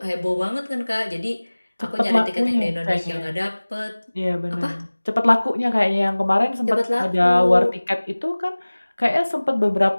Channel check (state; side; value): inverted; both; correlation -1.00